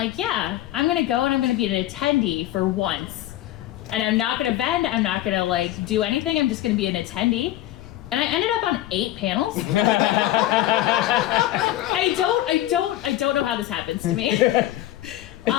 yeah, I'm gonna go and I'm gonna be an attendee for once. And I'm not gonna vend, I'm not gonna like do anything, I'm just gonna be an attendee. And I ended up on 8 panels. I don't know how this happens to me.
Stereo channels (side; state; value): right; quieter; 14.5 dB